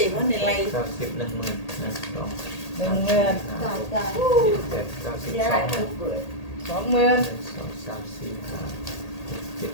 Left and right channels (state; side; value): late; right; 1.8 ms